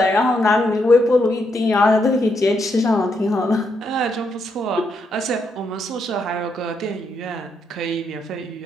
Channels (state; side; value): normal; both; correlation 0.79